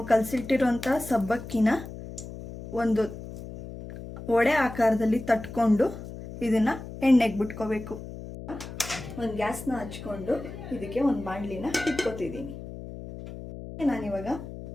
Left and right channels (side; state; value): left; noise; hum, 11 dB below the sound